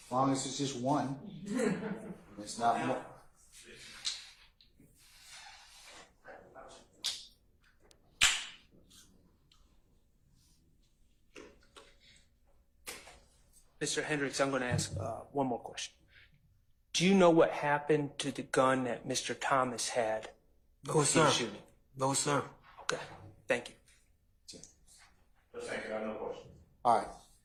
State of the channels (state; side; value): identical; both; correlation 1.00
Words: As long as it's just one, it's not more. Mr. Hendricks, I'm going to ask one more question. Do you know what happened to the gun that Mr. Thomas had? No, sir. Shooting? No, sir. Okay. Thank you. Thank you. I have no questions. All right.